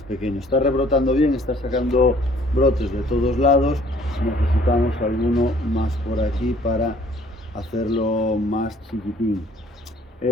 pequeño. Está rebrotando bien, está sacando brotes de todos lados, necesitamos alguno más por aquí para hacerlo más chiquitín.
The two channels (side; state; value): both; normal; correlation 0.58